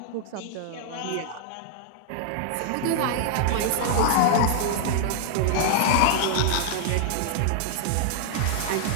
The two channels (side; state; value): both; different; correlation -0.01